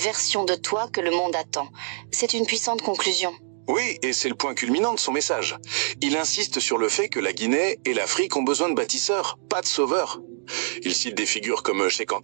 de toi que le monde attend. C'est une puissante conclusion. Oui, et c'est le point culminant de son message. Il insiste sur le fait que la Guinée et l'Afrique ont besoin de bâtisseurs, pas de sauveurs. Il cite des figures comme Cheikh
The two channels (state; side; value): silent; left; digital silence